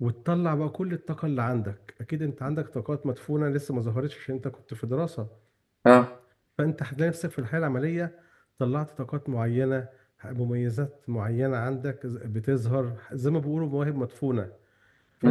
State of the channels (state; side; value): identical; both; correlation 1.00